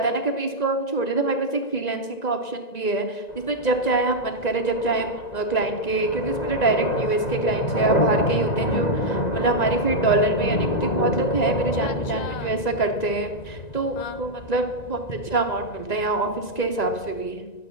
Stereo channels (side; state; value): right; late; 1.9 ms